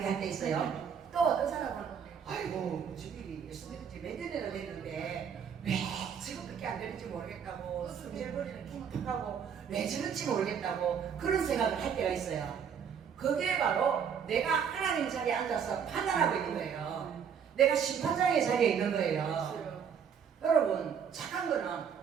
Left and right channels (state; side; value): quieter; left; 7.5 dB